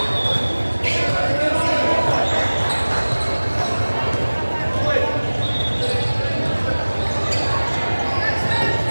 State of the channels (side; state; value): both; inverted; correlation -1.00